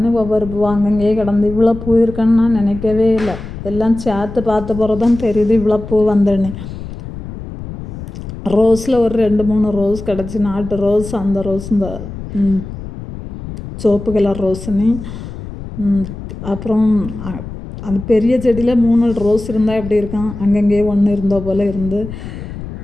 ஒவ்வொரு பூவாக அங்கங்கேயே கிடந்து இவ்வளோ பூ இருக்குன்னு நான் நினைக்கவே இல்லை. எல்லாம் சேர்த்து பார்த்த பிறகு தான் தெரியுது இவ்வளோ பூ வந்தேன்னு. ரோஸில் ஒரு 2-3 ரோஸ் கிடச்சி, நாட்டு ரோஸ். அந்த ரோஸ் இந்த சோப்பு கலர் ரோஸுன்னு. அப்புறம் அந்த பெரிய செடியில் 3 ரோஸ் இருந்தால் எப்படி இருக்கும், அங்கங்கேயே ஒன்று இருந்தோ போல் இருந்து.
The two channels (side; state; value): left; noise; rumble, 10 dB below the sound